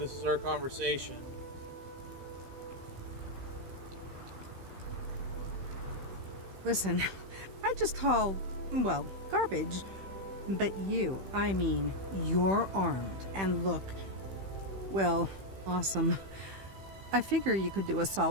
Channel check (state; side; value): late; left; 15 ms